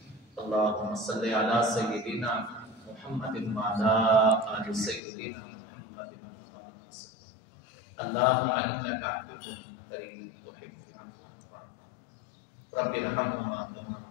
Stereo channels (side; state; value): right; drops out; at 5.0 s